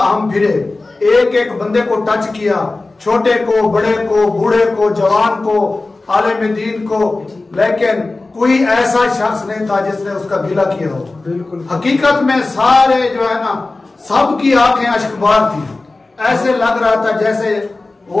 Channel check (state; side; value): quieter; right; 3.3 dB